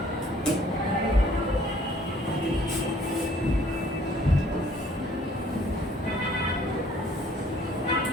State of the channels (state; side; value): normal; both; correlation 0.59